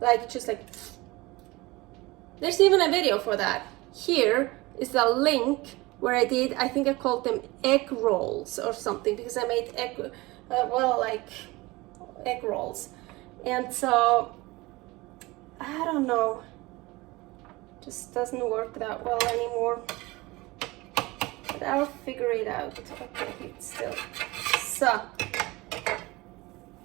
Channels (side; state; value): left; quieter; 21.8 dB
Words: like just like. There's even a video for that. Here is the link where I did, I think I called them egg rolls or something, because I made egg, like egg rolls. And so, I don't know, just doesn't work that well anymore. But I'll figure it out. Okay, it's still so.